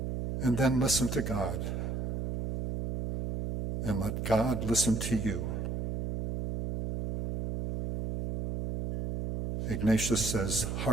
And then listen to God, and let God listen to you. Ignatius says,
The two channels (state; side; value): noise; right; hum, 3 dB below the sound